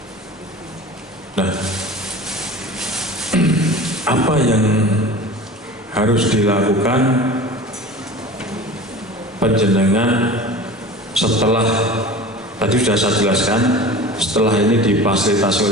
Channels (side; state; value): both; normal; correlation 0.37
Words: Nah, apa yang harus dilakukan panjenengan setelah tadi sudah saya jelaskan, setelah ini difasilitasi